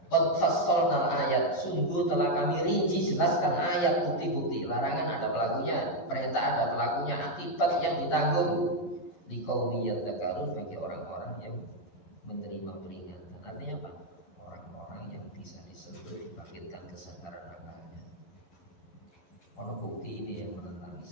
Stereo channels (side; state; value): right; late; 11 ms